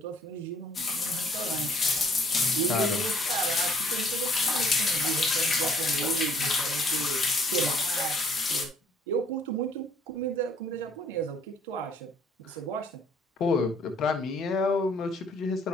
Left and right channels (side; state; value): both; normal; correlation 0.61